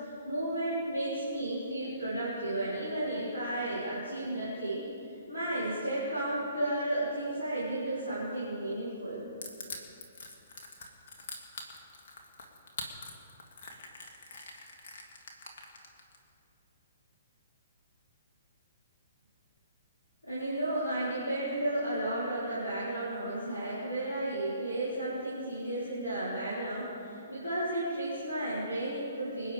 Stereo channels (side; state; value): both; inverted; correlation -0.65